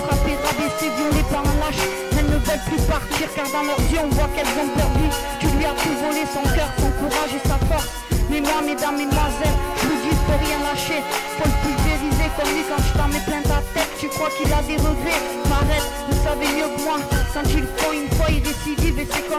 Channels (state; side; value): identical; both; correlation 1.00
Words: frappé, rabaissé, violé par un lâche. Elles ne veulent plus partir car dans leurs yeux on voit qu'elles ont perdu. Tu lui as tout volé, son cœur, son courage et sa force. Mais moi, mesdames, mesdemoiselles, je vous dis, faut rien lâcher. Faut le pulvériser comme lui quand je t'en mets plein ta tête. Tu crois qu'il a des regrets? M'arrête, vous savez mieux que moi. Quand il le faut une fois, il récidive et c'est